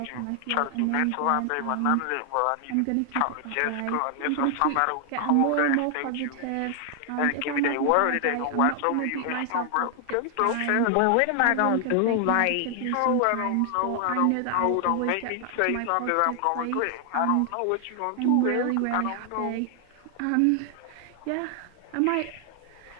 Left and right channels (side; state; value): both; different; correlation 0.00